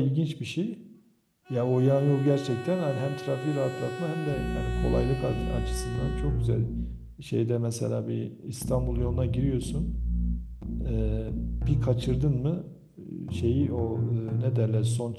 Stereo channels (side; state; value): both; identical; correlation 1.00